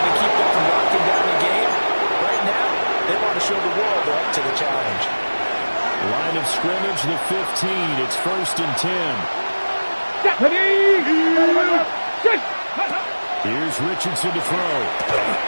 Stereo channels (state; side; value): inverted; both; correlation -1.00